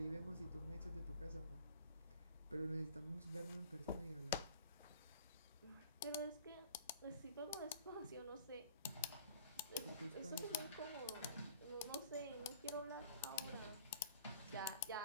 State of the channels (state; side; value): inverted; both; correlation -0.49